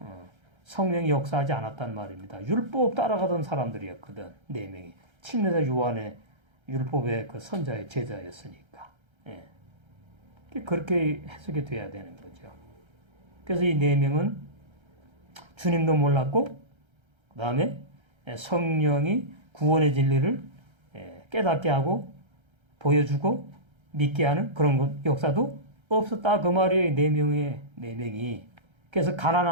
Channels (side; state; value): left; late; 1.3 ms